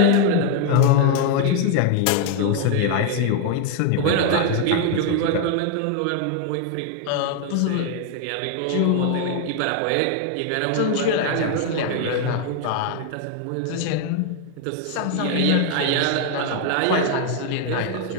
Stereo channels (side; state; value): both; different; correlation 0.00